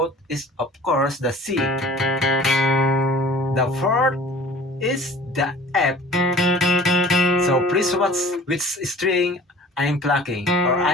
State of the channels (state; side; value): normal; both; correlation 0.46